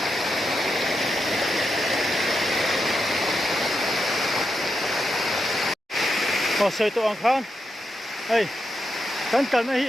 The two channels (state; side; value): normal; both; correlation 0.85